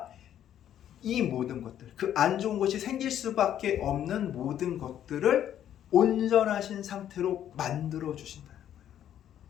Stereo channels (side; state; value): right; quieter; 10.6 dB